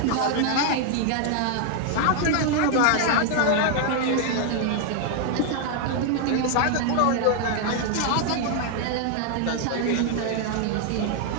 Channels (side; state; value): both; different; correlation 0.00